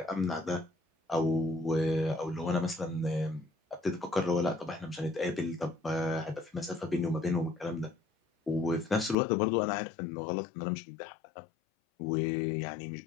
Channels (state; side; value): drops out; right; at 9.2 s